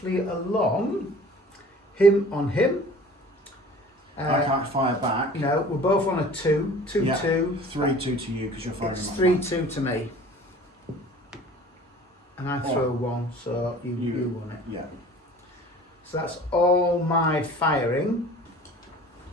along, him on him. I can't fire back. No, we're both on a 2, 2, Yeah. 2. 3, 2 to you because you're firing. It's my 3, back. 2 to me. And I throw 1, so you won it. Yeah. So that's all my firing.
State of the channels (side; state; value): both; normal; correlation 0.45